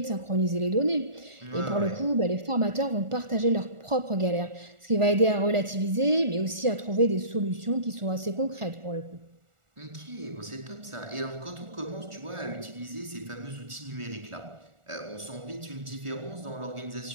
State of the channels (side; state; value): left; late; 1.4 ms